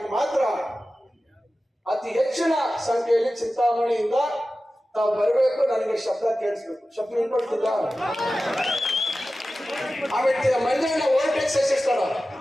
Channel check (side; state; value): both; normal; correlation 0.95